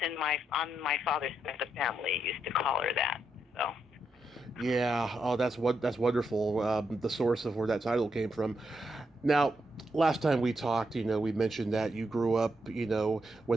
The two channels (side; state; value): both; normal; correlation 0.81